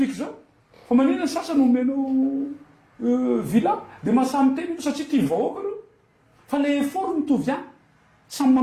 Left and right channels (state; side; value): identical; both; correlation 1.00